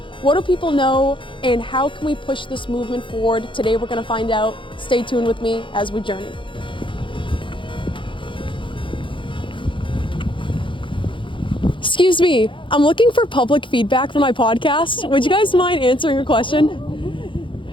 What do people know and how can we push this movement forward? Today we're going to find out. Stay tuned with me as we journey. Excuse me, I'm looking for public feedback for my podcast. Would you guys mind answering a question?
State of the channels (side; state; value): right; late; 0.24 ms